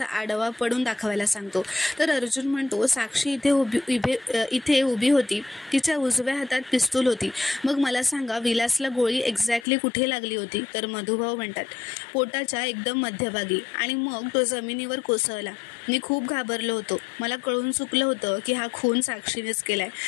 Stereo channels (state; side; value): drops out; right; at 9.7 s